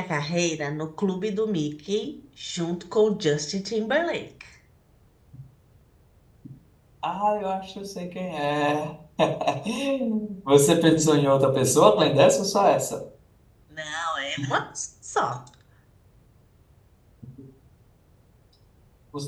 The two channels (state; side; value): identical; both; correlation 1.00